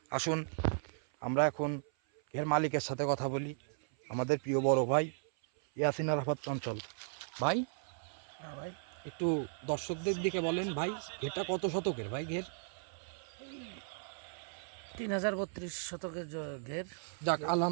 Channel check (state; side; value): silent; left; 54 dB below the other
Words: আসুন আমরা এখন ঘের মালিকের সাথে কথা বলি, আমাদের প্রিয় বড় ভাই ইয়াসিন আরাফাত চঞ্চল ভাই। হ্যাঁ ভাই, একটু দর্শকদের দিকে বলেন ভাই, ঘেরটা কত শতকের ভাই ঘের? 3032 শতকের ঘের। যাক,